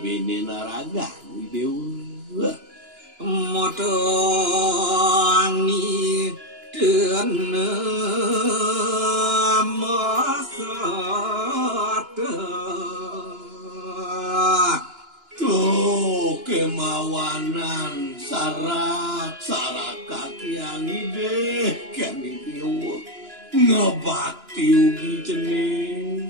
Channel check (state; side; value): late; left; 2.9 ms